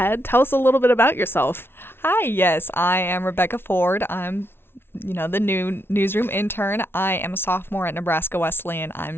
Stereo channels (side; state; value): right; late; 0.11 ms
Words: tell us a little bit about yourself. Hi, yes, I am Rebecca Ford. I'm the new newsroom intern. I am a sophomore at Nebraska Wesleyan.